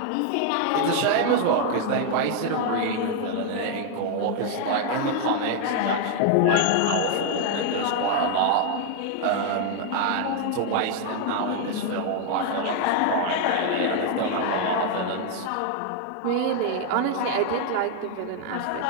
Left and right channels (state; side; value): different; both; correlation 0.00